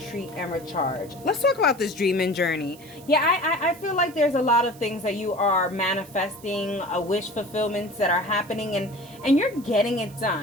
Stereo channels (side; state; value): right; noise; hiss, 22 dB below the sound